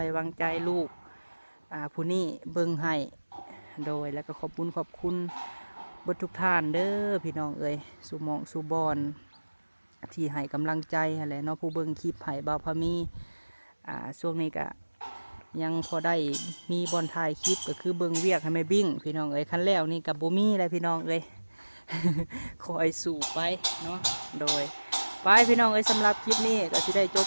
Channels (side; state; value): both; inverted; correlation -1.00